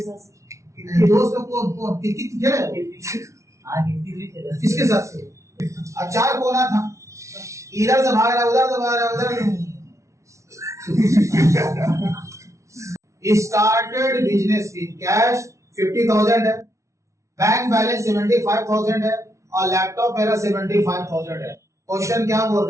साथ। दोस्त लोग को कितनी खेले हो? कितनी भी खेले। किसके साथ खेले? अब चार कोना था, इधर से भाग रहा उधर से भाग रहा उधर। स्टार्टेड बिजनेस विद कैश 50,000 है, बैंक बैलेंस 75,000 है और लैपटॉप मेरा 75,000 है। क्वेश्चन क्या बोल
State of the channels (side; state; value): left; late; 0.14 ms